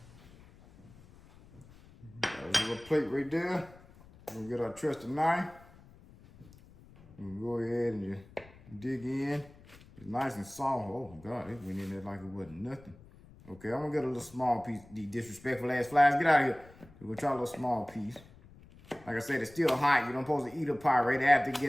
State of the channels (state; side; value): noise; left; rumble, 23 dB below the sound